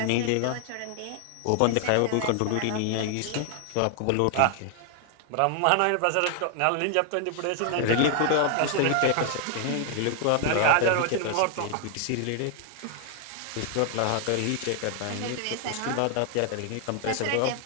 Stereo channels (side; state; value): both; different; correlation 0.00